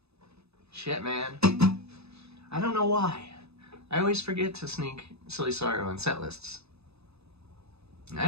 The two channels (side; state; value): left; late; 0.79 ms